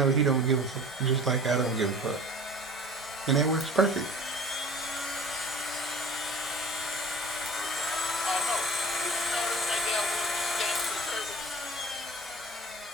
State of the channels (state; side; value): normal; both; correlation 0.43